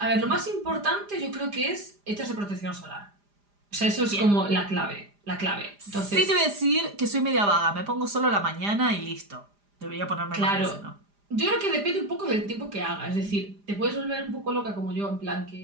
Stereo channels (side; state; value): left; late; 4.9 ms